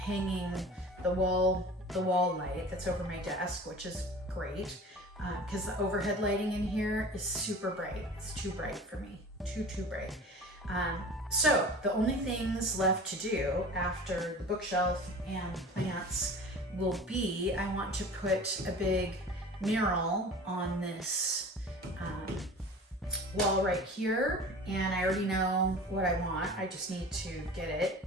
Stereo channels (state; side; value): normal; both; correlation 0.39